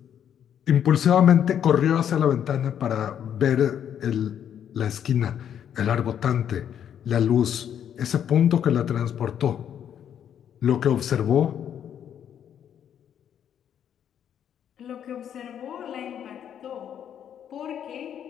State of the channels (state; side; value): quieter; right; 9.2 dB